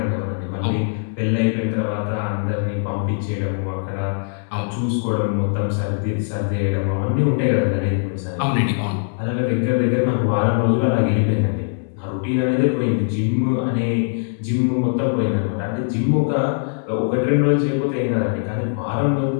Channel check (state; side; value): silent; right; 63 dB below the other